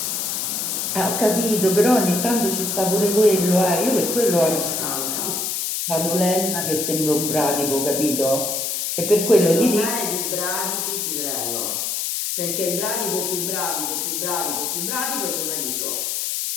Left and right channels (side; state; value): left; noise; hiss, 1 dB below the sound